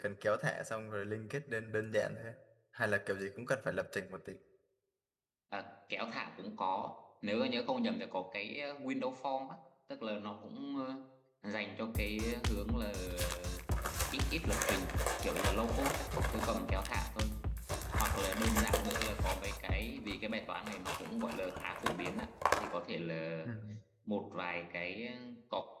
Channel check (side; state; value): both; identical; correlation 1.00